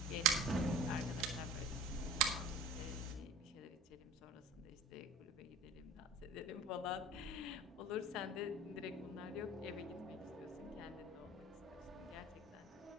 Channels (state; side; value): normal; both; correlation 0.40